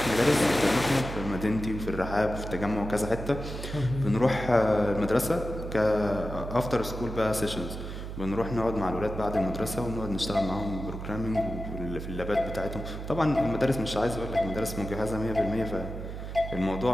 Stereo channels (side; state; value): right; noise; hum, 8 dB below the sound